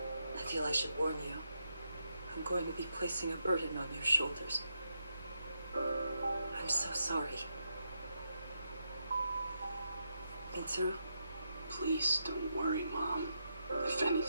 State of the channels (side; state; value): both; inverted; correlation -0.83